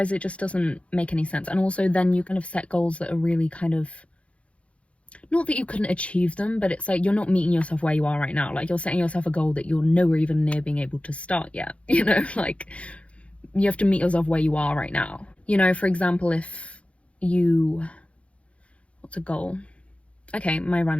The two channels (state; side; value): late; right; 0.062 ms